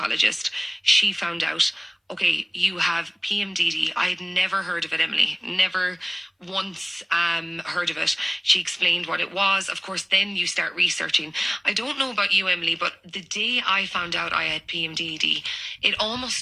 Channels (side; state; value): both; identical; correlation 1.00